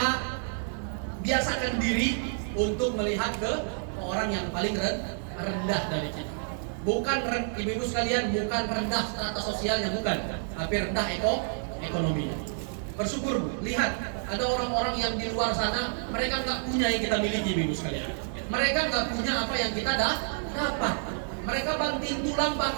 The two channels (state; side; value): silent; left; 59 dB below the other